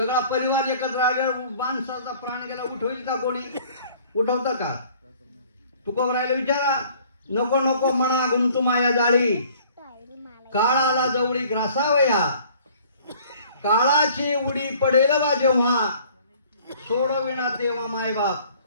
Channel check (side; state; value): both; inverted; correlation -0.54